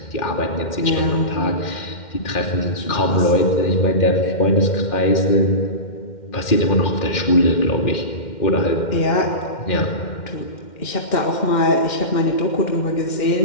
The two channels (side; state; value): right; late; 2.1 ms